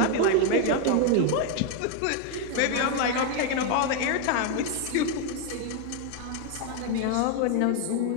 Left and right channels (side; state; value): both; different; correlation 0.01